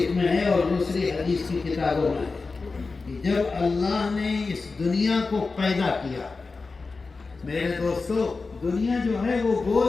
میں ہے اور دوسری حدیث کی کتابوں میں ہے، جب اللہ نے اس دنیا کو پیدا کیا۔ میرے دوستو دنیا جو ہے وہ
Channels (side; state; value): right; quieter; 4.1 dB